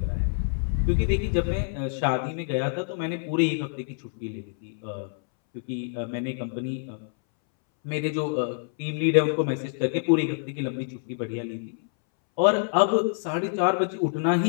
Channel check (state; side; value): silent; right; 61 dB below the other